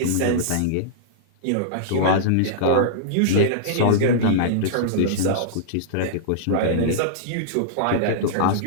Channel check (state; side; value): different; both; correlation -0.02